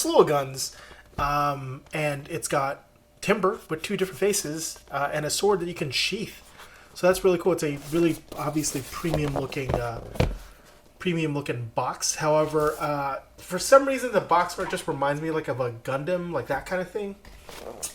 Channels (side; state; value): both; identical; correlation 1.00